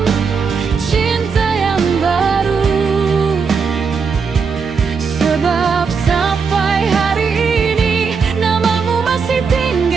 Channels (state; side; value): quieter; left; 5.5 dB